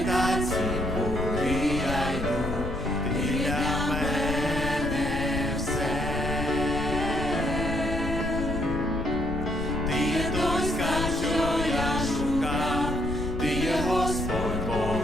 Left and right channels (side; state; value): left; noise; rumble, 5 dB below the sound